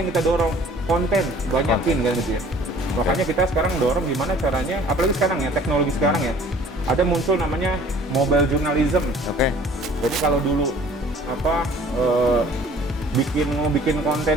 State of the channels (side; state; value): both; normal; correlation 0.52